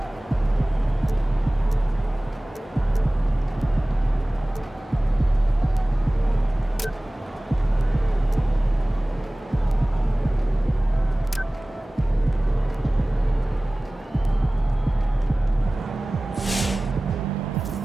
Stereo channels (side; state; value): both; normal; correlation 0.98